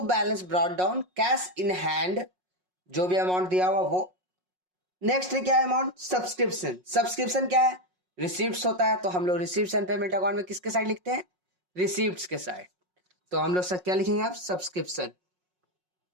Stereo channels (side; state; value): left; late; 5.5 ms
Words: balance brought down, cash in hand जो भी अमाउंट दिया हुआ वो। नेक्स्ट क्या है अमाउंट, सब्सक्रिप्शन। सब्सक्रिप्शन क्या है, रिसिप्ट्स होता है, तो हम लोग रिसिप्ट्स एंड पेमेंट अकाउंट में किसके साइड लिखते हैं, रिसिप्ट्स के साइड। तो हम लोग सब क्या लिखेंगे आप, सब्सक्रिप्शन।